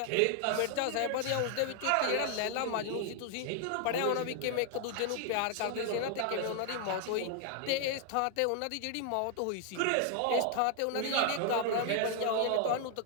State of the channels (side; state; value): both; different; correlation 0.00